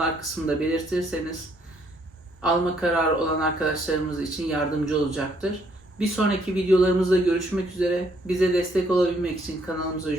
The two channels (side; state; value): both; normal; correlation 0.68